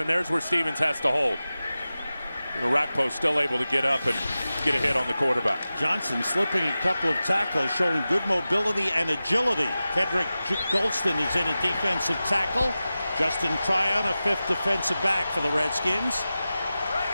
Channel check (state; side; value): inverted; both; correlation -0.95